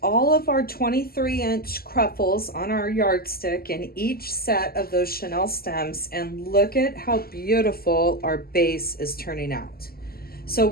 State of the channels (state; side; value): late; right; 0.44 ms